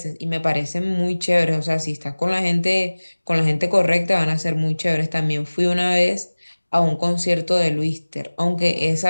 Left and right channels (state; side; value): inverted; both; correlation -1.00